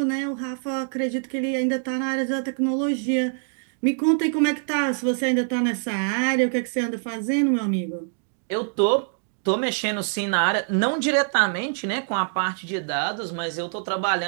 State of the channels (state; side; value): silent; left; digital silence